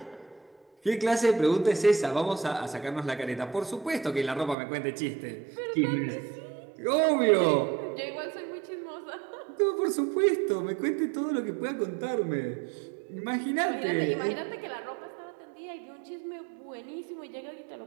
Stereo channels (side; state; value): left; drops out; at 4.5 s